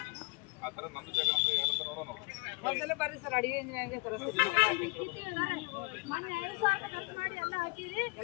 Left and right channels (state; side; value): quieter; right; 28.3 dB